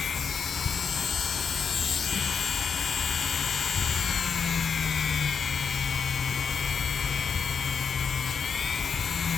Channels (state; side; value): quieter; right; 6.4 dB